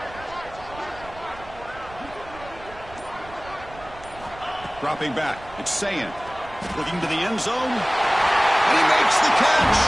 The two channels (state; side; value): noise; right; rumble, 19 dB below the sound